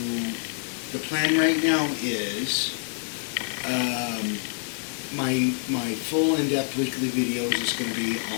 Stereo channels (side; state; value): right; silent; 61 dB below the other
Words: The plan right now is my full in-depth weekly video is just going to be